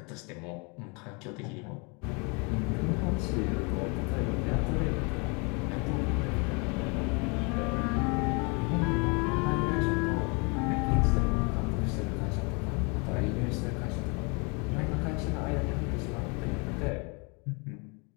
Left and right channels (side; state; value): right; quieter; 32.0 dB